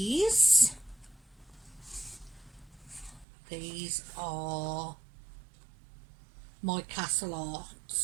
are my Castle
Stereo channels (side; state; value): left; drops out; at 3.2 s